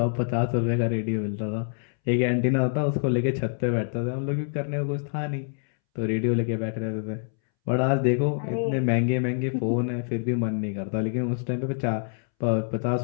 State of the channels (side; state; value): right; silent; 61 dB below the other